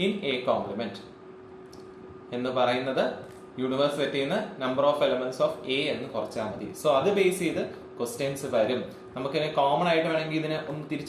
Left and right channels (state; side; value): identical; both; correlation 1.00